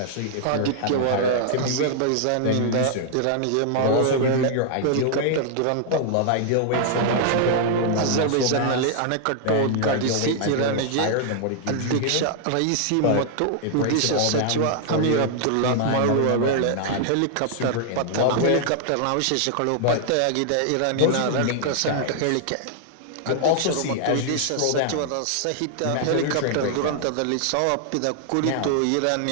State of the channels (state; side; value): different; both; correlation 0.00